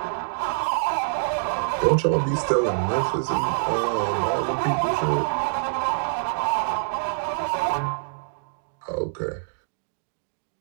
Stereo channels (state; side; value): silent; left; digital silence